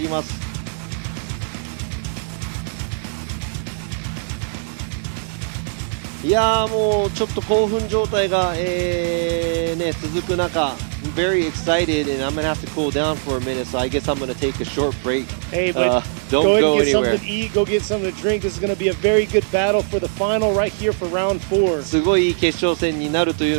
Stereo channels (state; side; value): silent; left; 65 dB below the other